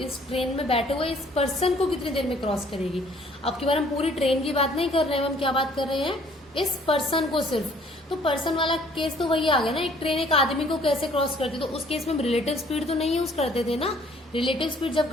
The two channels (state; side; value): normal; both; correlation 0.58